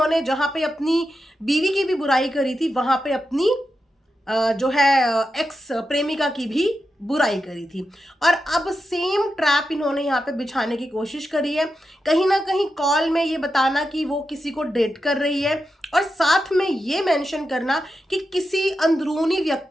जहां पे अपनी बीवी की भी बुराई करी थी वहां पे अपनी जो है एक्स प्रेमिका की भी बुराई करी थी। और अब सेम ट्रैप इन्होंने यहाँ पे बिछाने की कोशिश करी है, कहीं ना कहीं कॉल में ये बताना कि वो किसी को डेट कर रही है और साथ में ये मेंशन करना कि किसी अंदरूनी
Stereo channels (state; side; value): normal; both; correlation 0.88